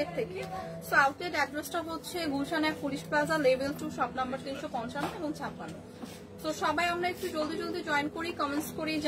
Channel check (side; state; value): both; identical; correlation 1.00